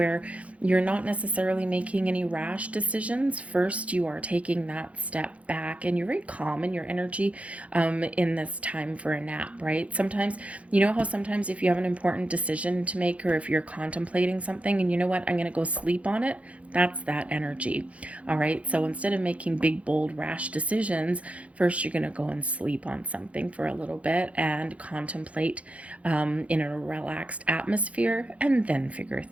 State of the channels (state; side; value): late; left; 0.064 ms